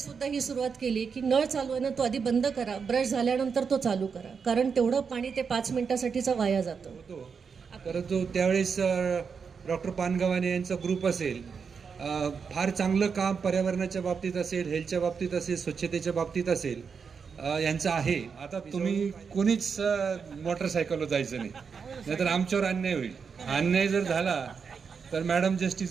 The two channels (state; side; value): quieter; left; 5.9 dB